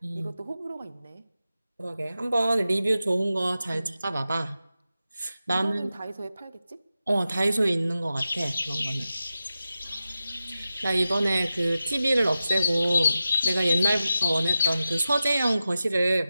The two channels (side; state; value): both; inverted; correlation -0.92